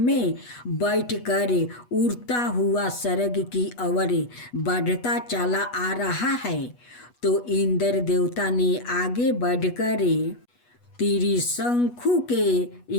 में बैठकर उड़ता हुआ स्वर्ग की ओर बढ़ता चला आ रहा है, तो इंद्र देवता ने आगे बढ़कर त्रिशंकु के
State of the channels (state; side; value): late; right; 8.2 ms